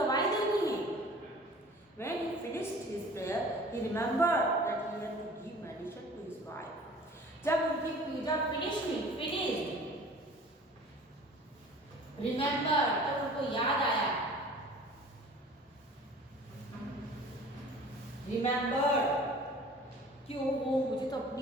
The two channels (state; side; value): normal; both; correlation 0.45